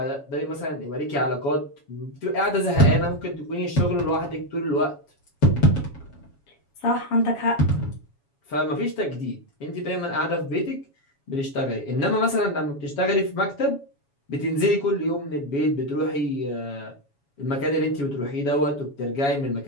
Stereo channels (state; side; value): late; right; 7.2 ms